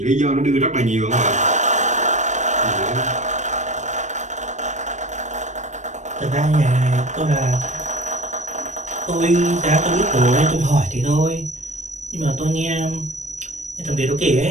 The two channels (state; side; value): late; left; 0.34 ms